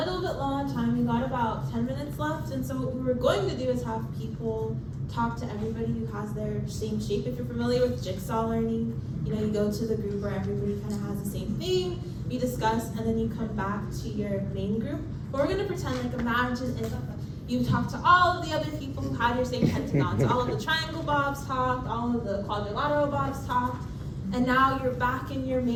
bit low on time. We got about 10 minutes left, and so what we were going to do is have people talk to everybody who has their same shape. If you're familiar with jigsaw learning, you go to the group where everybody kind of has the same thing, you discuss, and then you come back to your main group. But we're going to pretend like imagine if you talked to all of the other people who had your same pentagons. All of the triangle bobs talked, all of the quadrilateral bobs talked, and now you're back in your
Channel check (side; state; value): both; identical; correlation 1.00